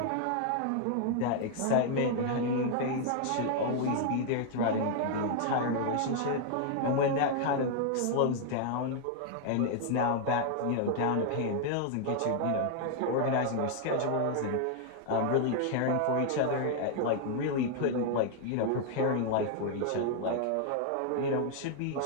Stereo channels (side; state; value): both; different; correlation 0.00